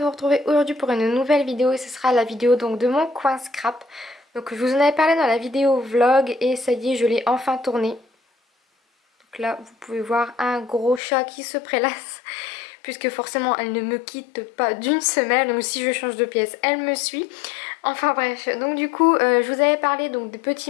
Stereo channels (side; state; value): right; drops out; at 11.0 s